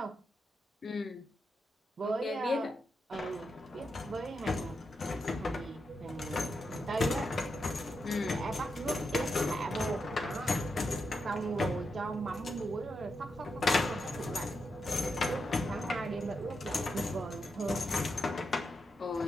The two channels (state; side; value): normal; both; correlation 0.85